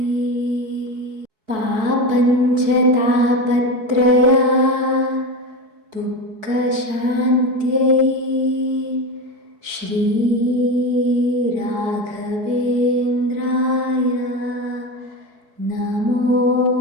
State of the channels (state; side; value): late; left; 4.7 ms